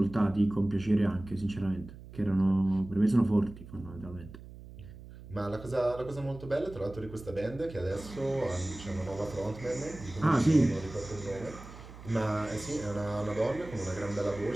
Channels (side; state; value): right; noise; hum, 16 dB below the sound